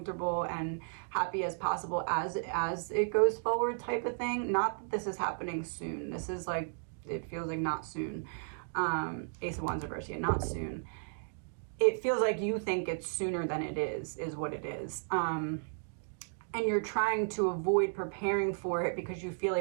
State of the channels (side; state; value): left; silent; digital silence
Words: and happy as possible as it goes forward, type of thing. Not that this is happening soon. This is like, it feels like not soon. Ace of Wands reverse, yeah, not soon. It feels like you think it's sooner than it is what it is. And you're trying to avoid preparing for it because you feel